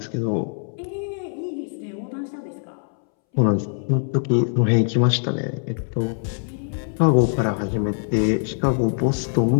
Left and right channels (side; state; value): right; silent; 64 dB below the other